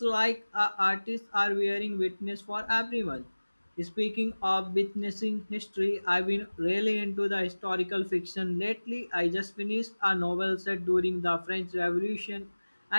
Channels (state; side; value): inverted; both; correlation -1.00